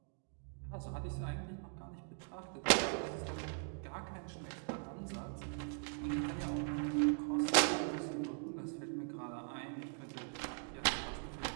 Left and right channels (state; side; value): silent; left; 51 dB below the other